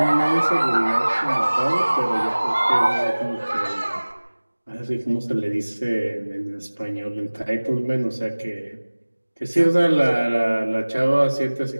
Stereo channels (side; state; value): both; inverted; correlation -1.00